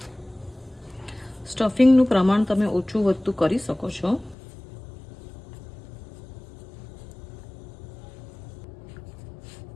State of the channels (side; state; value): right; drops out; at 4.4 s